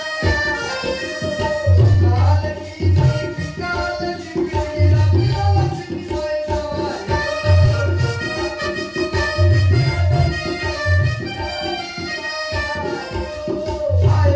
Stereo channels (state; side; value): identical; both; correlation 1.00